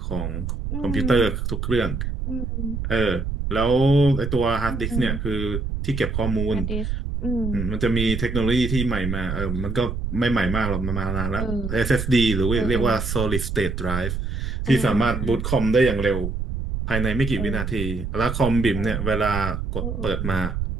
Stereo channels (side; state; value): right; noise; rumble, 3 dB below the sound